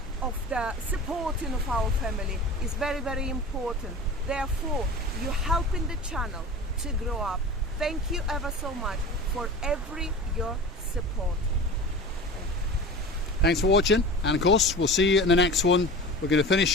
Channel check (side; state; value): both; normal; correlation 0.34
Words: of the supporting of our family is very important. Therefore, you're helping the channel to grow up. Thank you ever so much for your support. Thanks for watching, and of course we'll see you in the next one. We're going to